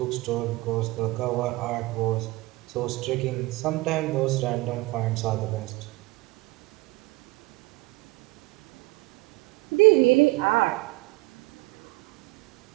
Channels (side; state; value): left; quieter; 21.9 dB